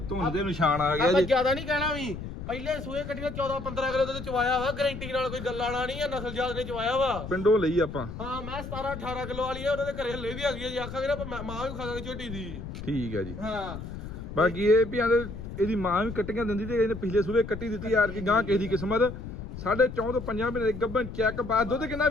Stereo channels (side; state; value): left; noise; rumble, 9 dB below the sound